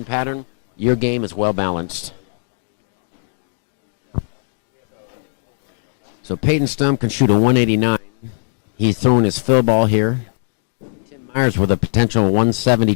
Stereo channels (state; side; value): silent; right; digital silence